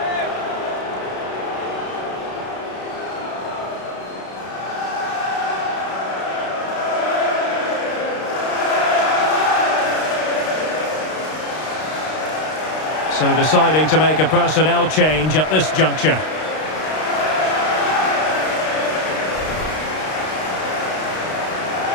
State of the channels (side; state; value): right; late; 32 ms